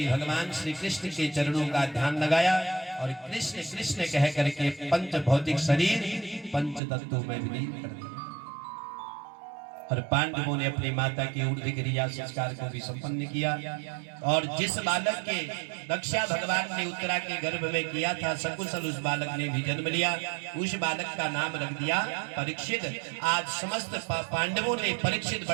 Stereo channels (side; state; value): left; drops out; at 6.8 s